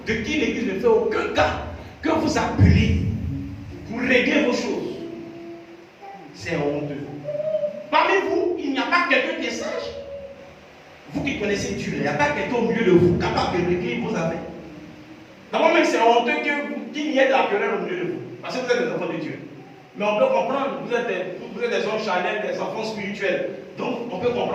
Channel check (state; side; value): identical; both; correlation 1.00